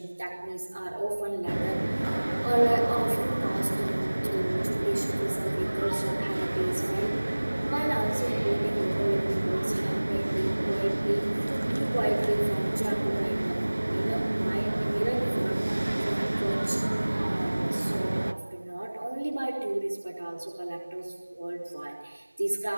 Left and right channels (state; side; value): inverted; both; correlation -1.00